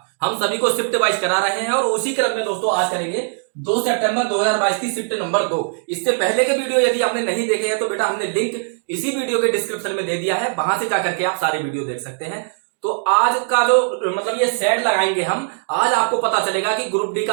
हम सभी को शिफ्ट वाइज करा रहे हैं और उसी क्रम में दोस्तों आज करेंगे 2 सितंबर 2022 की शिफ्ट नंबर 2। इससे पहले के वीडियो यदि आपने नहीं देखे हैं तो बेटा हमने लिंक इसी वीडियो के डिस्क्रिप्शन में दे दिया है, वहां से जाकर के आप सारे वीडियो देख सकते हैं। तो आज का जो मतलब ये सेट लगाएंगे हम, आज आपको पता चलेगा कि ग्रुप डी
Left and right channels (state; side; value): silent; left; digital silence